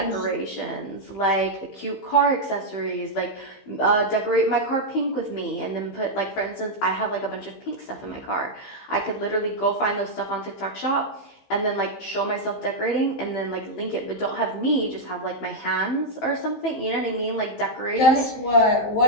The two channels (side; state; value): right; late; 15 ms